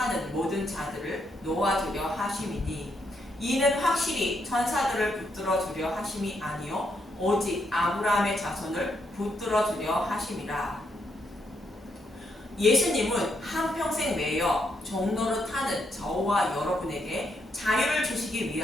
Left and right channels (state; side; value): normal; both; correlation 0.78